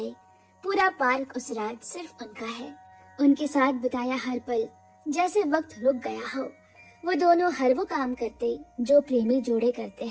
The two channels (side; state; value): both; identical; correlation 1.00